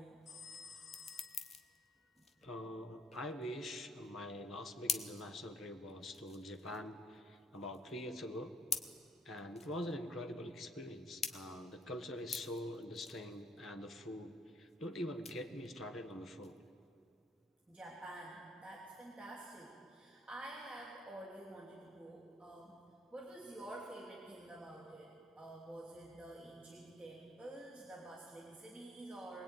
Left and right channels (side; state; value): both; normal; correlation 0.65